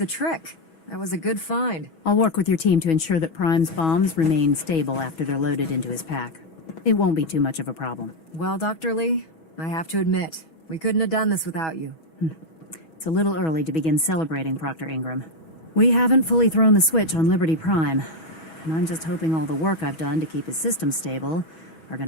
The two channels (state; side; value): late; right; 6.2 ms